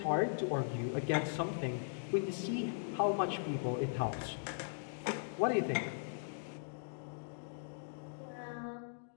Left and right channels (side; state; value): right; silent; digital silence